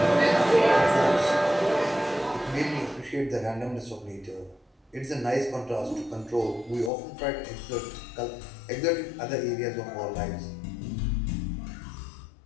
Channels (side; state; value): right; drops out; at 6.9 s